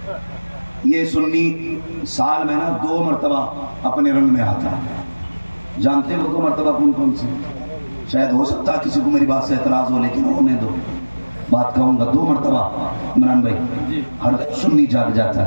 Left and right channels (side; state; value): both; inverted; correlation -1.00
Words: یہ سنی سال میں نا 2 مرتبہ اپنے رنگ میں آتا ہے۔ جانتے ہو 2 مرتبہ کون کون سے؟ شاید ہو سکتا ہے کسی کو میری بات سے اعتراض ہو، لیکن ہونے دو، بات کہوں گا 2 مرتبہ عمران بھائی ہر سنی جاگ جاتا